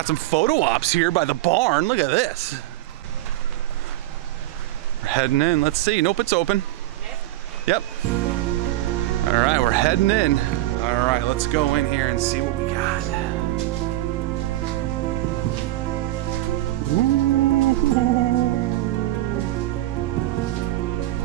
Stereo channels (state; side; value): quieter; left; 15.8 dB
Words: some photo ops here by the barn. Look at this. We're heading in. Let's see. Nope, it's open. Yep. All right, we're heading in. All right, let's go in here and see what we got.